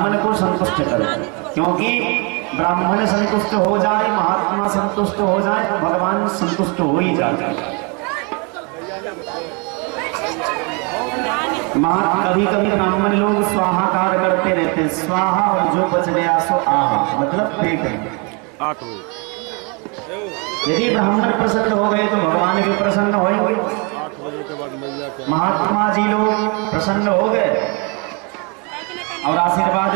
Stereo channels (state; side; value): quieter; left; 32.6 dB